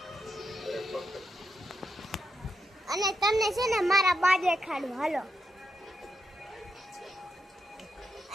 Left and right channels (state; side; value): normal; both; correlation 0.83